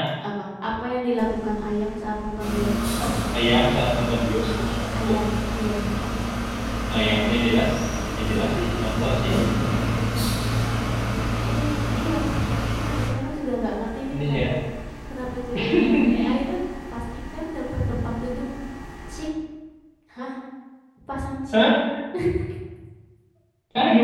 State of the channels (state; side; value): identical; both; correlation 1.00